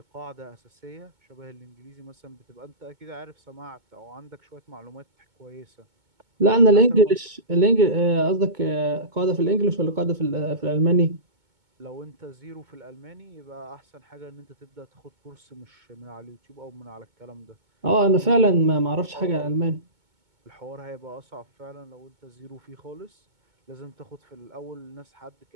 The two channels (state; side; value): late; left; 2.2 ms